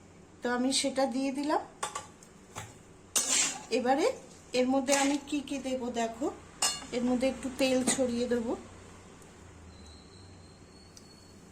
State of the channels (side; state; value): both; identical; correlation 1.00